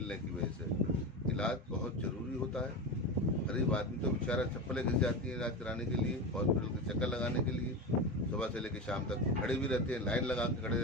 की वजह से। इलाज बहुत ज़रूरी होता है। गरीब आदमी तो बेचारा चप्पलें घिस जाती हैं इलाज कराने के लिए, हॉस्पिटल के चक्कर लगाने के लिए। सुबह से लेकर शाम तक खड़े भी रहते हैं, लाइन लगा के खड़े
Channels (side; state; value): both; normal; correlation 0.22